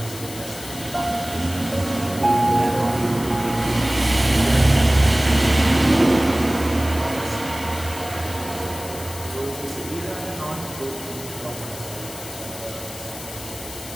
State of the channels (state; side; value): noise; left; hiss, 13 dB below the sound